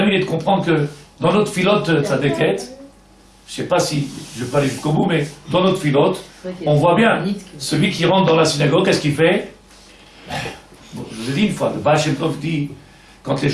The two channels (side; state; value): both; identical; correlation 1.00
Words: il est de comprendre que dans notre filote de sa déquête, je sais pas si je vais pas aller jusqu'au bout, mais dans notre filote, on voit bien celui qui rentre dans la synagogue, qu'est-ce qu'il fait? Bon, je vous ai dit une fois, le Baal Shem Tov dit, quand les